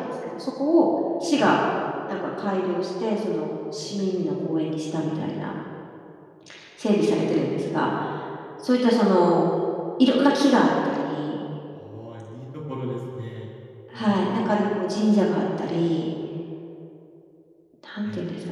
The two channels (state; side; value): identical; both; correlation 1.00